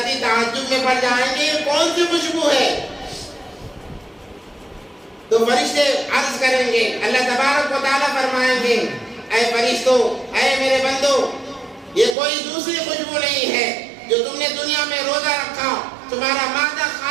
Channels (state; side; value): drops out; left; at 12.2 s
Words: تعجب میں پڑ جائیں گے یہ کون سی خوشبو ہے؟ تو فرشتے عرض کریں گے، اللہ تبارک و تعالیٰ فرمائیں گے اے فرشتوں، اے میرے بندو، یہ کوئی دوسری خوشبو نہیں ہے جو تم نے دنیا میں روزہ رکھا، تمہارا معدہ